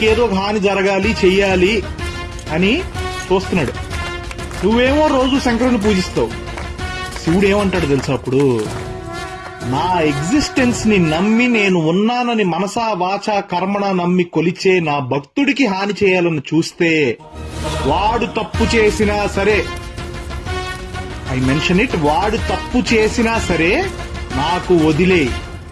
ఒక హాని జరగాలి చెయ్యాలి అని చూస్తున్నాడు. నువ్వేమో రోజు శంకరుని పూజిస్తావు. శివుడు ఏమంటాడు తెలుసా అప్పుడు? నా ఎగ్జిస్టెన్స్ ని నమ్మి నేను ఉన్నానని మనసా వాచా కర్మణ నమ్మి కొలిచే నా భక్తుడికి హాని చేయాలని చూస్తే వాడు తప్పు చేసినా సరే, ఐ మెన్షన్ ఇట్, వాడు తప్పు చేసినా సరే నాకు వదిలే,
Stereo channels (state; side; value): identical; both; correlation 1.00